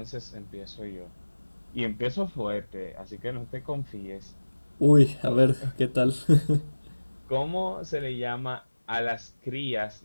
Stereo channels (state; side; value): inverted; both; correlation -1.00